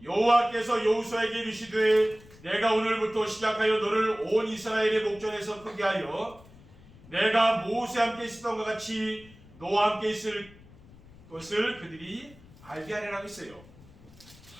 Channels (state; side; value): noise; left; rumble, 23 dB below the sound